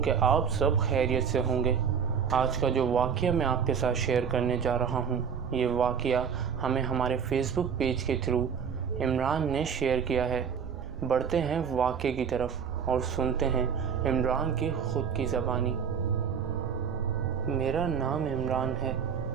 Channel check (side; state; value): left; quieter; 7.0 dB